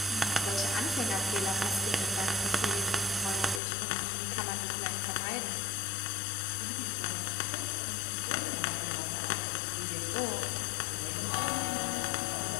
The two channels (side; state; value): right; drops out; at 3.6 s